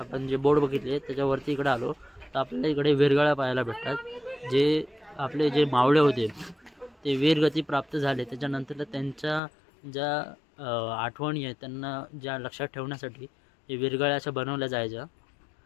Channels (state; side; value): drops out; right; at 9.4 s